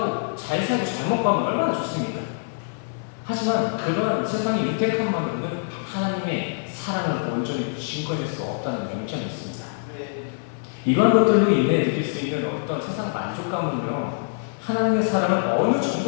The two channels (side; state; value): right; silent; 56 dB below the other